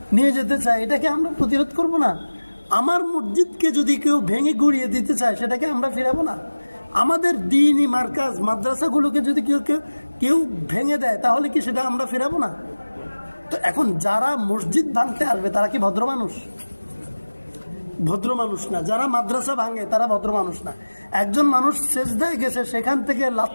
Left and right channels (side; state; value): both; inverted; correlation -1.00